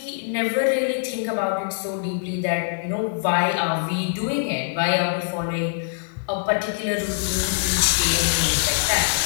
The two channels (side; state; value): right; silent; digital silence